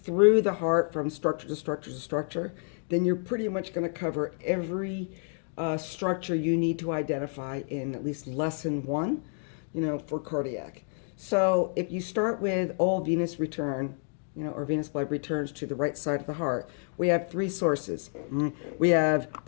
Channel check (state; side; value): silent; right; 56 dB below the other